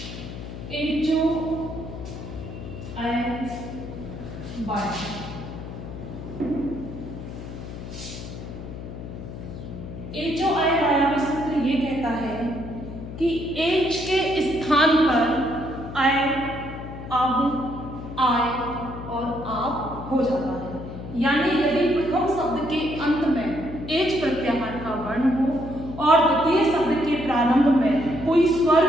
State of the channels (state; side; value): noise; left; hum, 10 dB below the sound